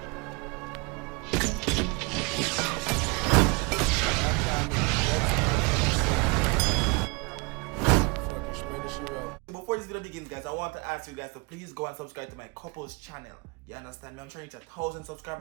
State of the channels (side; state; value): left; quieter; 29.3 dB